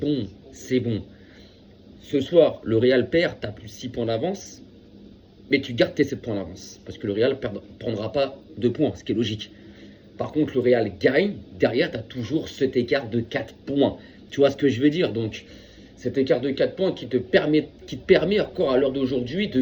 c'est bon. Ce soir, le Real perd, tu as plus 6 points d'avance, mais tu gardes tes 7 points d'avance. Parce que le Real ne prendra pas 2 points, ce qui est logique. Par contre, le Real gagne, derrière, tu as toujours cet écart de 4 points. Tu vois ce que je veux dire? Donc, cet écart de 4 points qui te permet encore à l'heure d'aujourd'hui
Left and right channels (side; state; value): both; identical; correlation 1.00